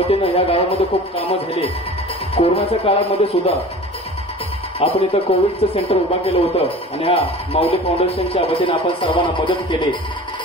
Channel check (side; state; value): both; normal; correlation 0.40